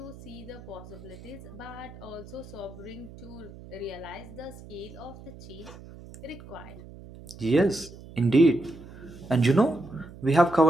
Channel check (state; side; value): noise; right; hum, 16 dB below the sound